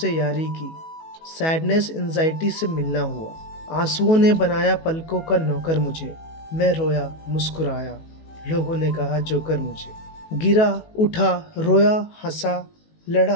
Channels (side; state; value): right; late; 18 ms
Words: यारी की, सैडनेस एंजाइटी से मिलना हुआ। आंसुओं ने बनाया पलकों का नौकर मुझे। मैं रोया मुस्कुराया, लोगों ने कहा जोकर मुझे। गिरा उठा रोया हंसा